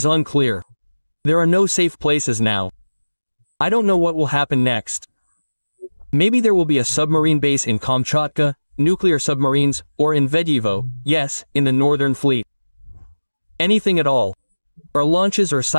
unclear. There are no safe places now. I don't know what will happen next. Maybe there will be a submarine base in Kamchatka, nuclear submarines, or in Vedyevo, yes, in the Northern Fleet. Anything at all. Or launches or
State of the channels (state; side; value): inverted; both; correlation -1.00